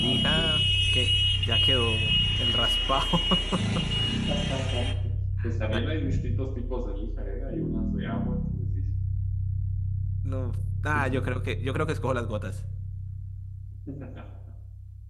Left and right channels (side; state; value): both; identical; correlation 1.00